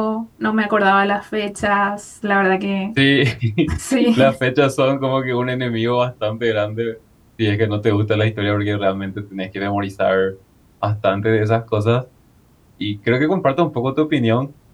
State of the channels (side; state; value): both; identical; correlation 1.00